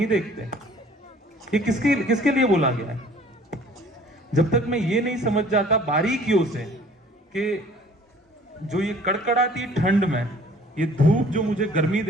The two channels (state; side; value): normal; both; correlation 0.52